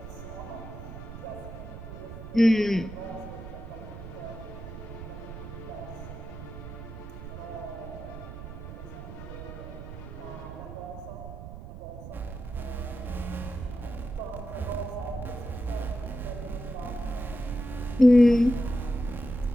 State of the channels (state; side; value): noise; right; rumble, 11 dB below the sound